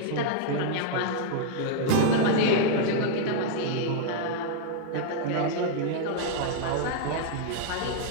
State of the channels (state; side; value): different; both; correlation -0.01